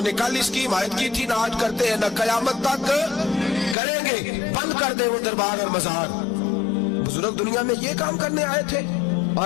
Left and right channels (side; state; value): right; drops out; at 3.8 s